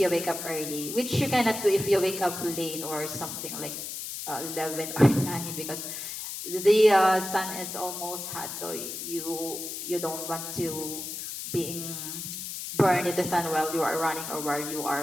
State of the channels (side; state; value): left; noise; hiss, 7 dB below the sound